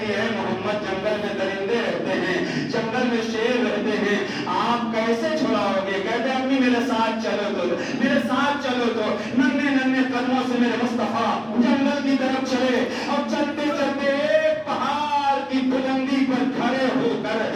ہے محمد جنگل میں درندے رہتے ہیں، جنگل میں شیر رہتے ہیں، آپ کیسے چھڑاؤ گے؟ کہتے ہیں امی میرے ساتھ چلو تو، میرے ساتھ چلو تو۔ ننھے ننھے قدموں سے میرے مصطفیٰ جنگل کی طرف چلے، اور چلتے چلتے ایک پہاڑ کی بلندی پر کھڑے ہو کر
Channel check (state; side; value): identical; both; correlation 1.00